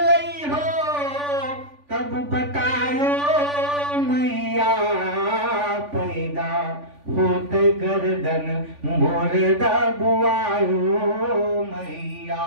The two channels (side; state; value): left; late; 3.5 ms